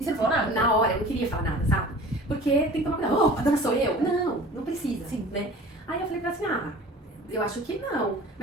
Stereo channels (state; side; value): normal; both; correlation 0.43